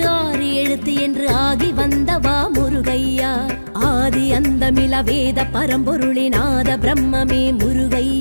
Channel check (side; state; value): both; inverted; correlation -1.00